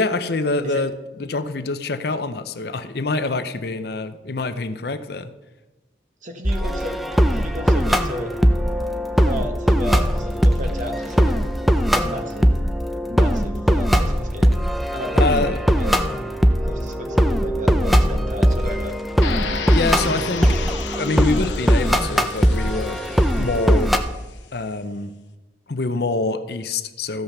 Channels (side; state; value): both; normal; correlation 0.81